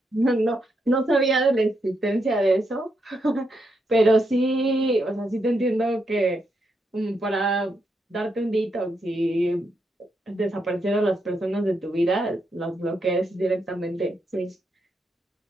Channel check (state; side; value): normal; both; correlation 0.81